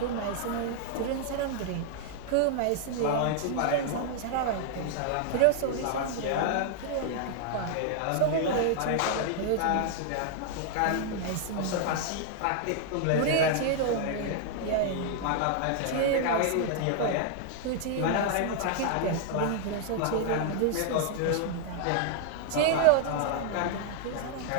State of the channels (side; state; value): both; different; correlation 0.00